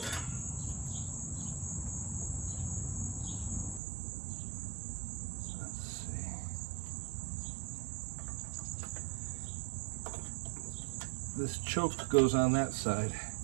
this choke goes on that side,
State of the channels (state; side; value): drops out; left; at 3.8 s